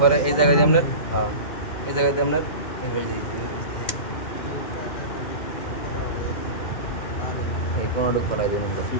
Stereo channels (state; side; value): late; right; 2.1 ms